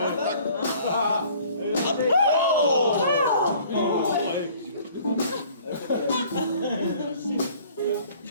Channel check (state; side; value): inverted; both; correlation -0.53